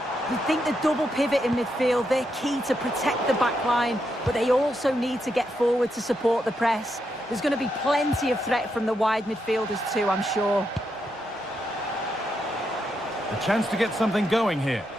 You think the double pivot in midfield, they're key to protect the back line, but they also need to get forward to support the press. There's going to be plenty of threat from the wide midfielders too, I'm sure. A chance to get something going here.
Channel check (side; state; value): both; normal; correlation 0.82